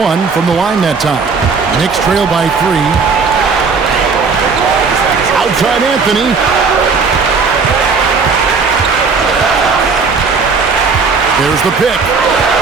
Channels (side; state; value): left; quieter; 4.9 dB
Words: from the line that time. Knicks trail by 3. Outside Anthony. There's the pick.